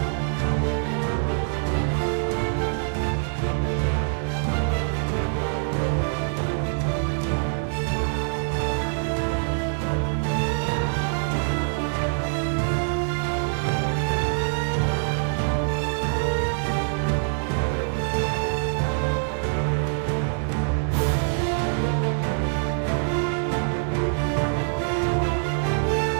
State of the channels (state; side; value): silent; left; digital silence